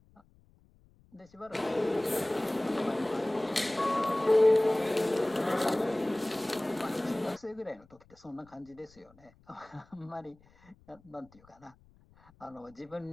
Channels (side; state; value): left; noise; rumble, 29 dB below the sound